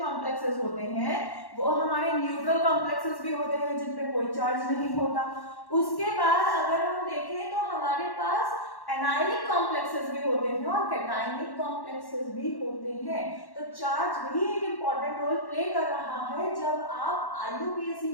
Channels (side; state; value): right; late; 1.1 ms